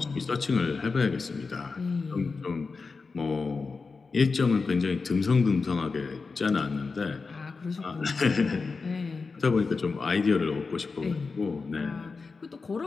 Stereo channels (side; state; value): right; quieter; 4.4 dB